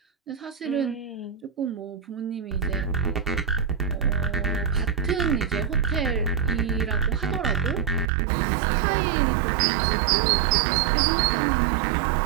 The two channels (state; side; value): drops out; left; at 8.1 s